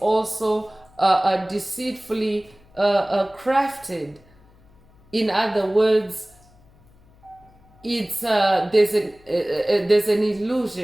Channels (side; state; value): left; noise; hum, 29 dB below the sound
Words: also deceitfully crafted. In other words, it's there's an